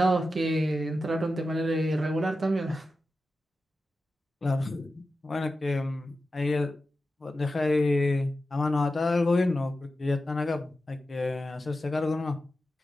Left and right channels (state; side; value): normal; both; correlation 0.92